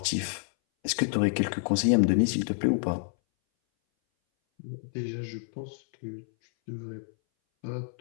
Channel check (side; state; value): right; silent; 59 dB below the other